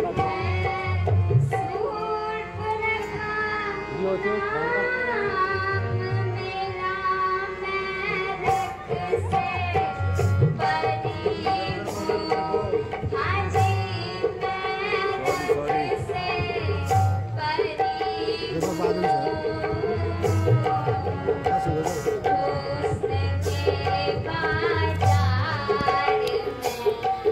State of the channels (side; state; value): both; identical; correlation 1.00